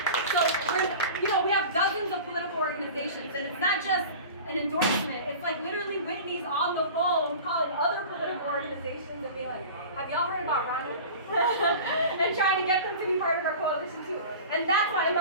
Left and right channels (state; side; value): inverted; both; correlation -0.37